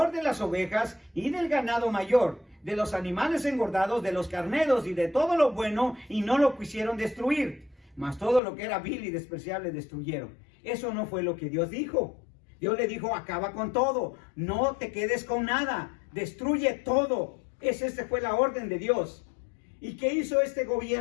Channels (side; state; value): right; drops out; at 8.4 s